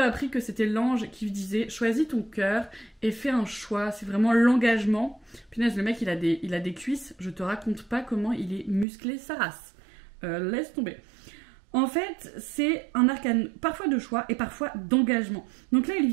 que c'était l'ange qui lui disait « Choisis ton cœur et fais un choix. » C'est vraiment l'engagement. Punaise, le mec, il a des cuisses. Je te raconte pas comment il est musclé sa race. Laisse tomber. En fait, c'est un arcane parfois de choix et parfois d'engagement. Donc là, il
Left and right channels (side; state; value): left; drops out; at 8.8 s